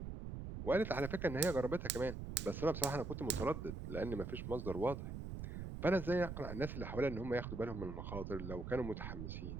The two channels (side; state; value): right; noise; rumble, 6 dB below the sound